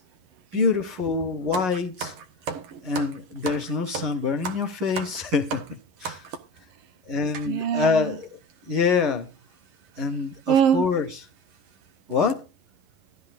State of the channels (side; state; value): left; late; 11 ms